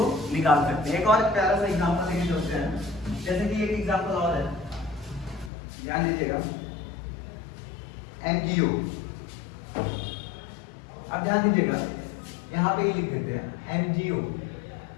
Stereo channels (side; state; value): right; drops out; at 5.5 s